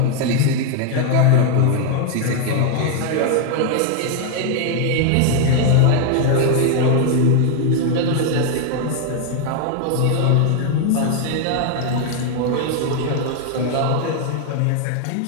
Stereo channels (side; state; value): both; different; correlation 0.00